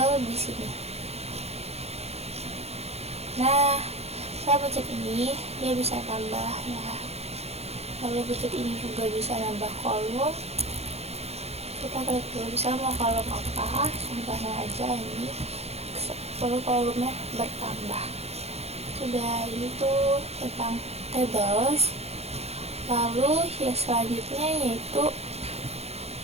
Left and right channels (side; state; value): left; late; 0.30 ms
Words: di sini. Nah, saya pencet ini, dia bisa tambah ya. Lalu pencet ini juga bisa nambah kolom. Kita klik dulu, bisa mau kolom apa, contohnya aja ini. Lalu kolomnya bertambah. Sudah, ini tuh tentang tables. Lalu ya selanjutnya yaitu